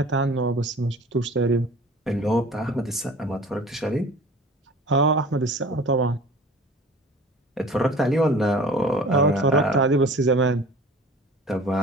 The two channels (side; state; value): both; normal; correlation 0.44